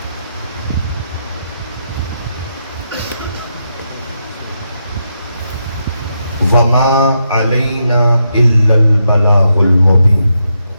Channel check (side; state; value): both; inverted; correlation -0.83